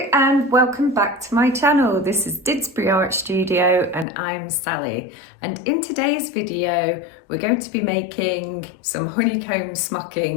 and welcome back to my channel. This is Didsbury Art Studio and I'm Sally, and in today's video we're going to be making some honeycomb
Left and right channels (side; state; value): right; drops out; at 4.0 s